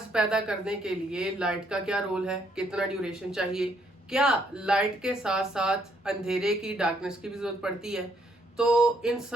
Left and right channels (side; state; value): both; normal; correlation 0.70